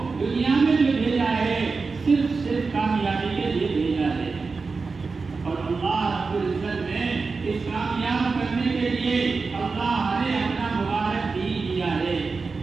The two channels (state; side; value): quieter; left; 4.4 dB